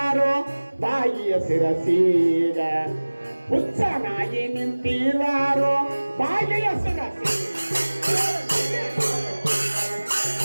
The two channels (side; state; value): both; inverted; correlation -1.00